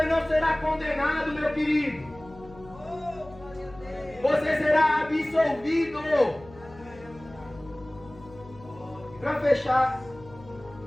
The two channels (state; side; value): noise; left; hum, 20 dB below the sound